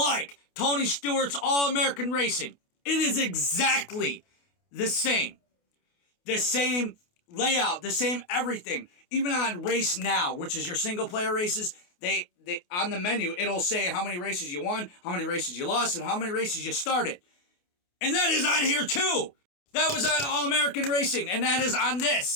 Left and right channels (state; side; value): late; right; 28 ms